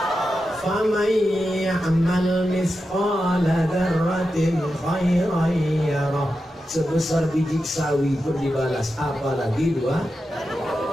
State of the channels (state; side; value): normal; both; correlation 0.90